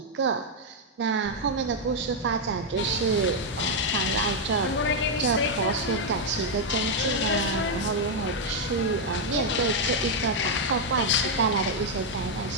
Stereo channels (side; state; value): both; normal; correlation 0.00